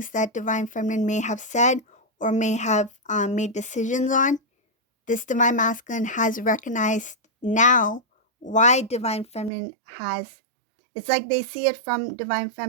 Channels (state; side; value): drops out; left; at 9.5 s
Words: that divine feminine may have said or may have made decisions on. This divine masculine has recognized now why divine feminine has. It's like they see it from divine